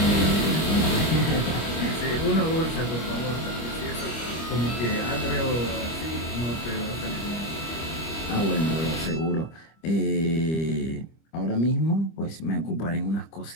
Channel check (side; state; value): right; late; 25 ms